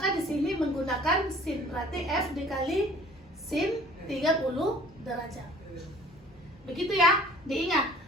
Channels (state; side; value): normal; both; correlation 0.51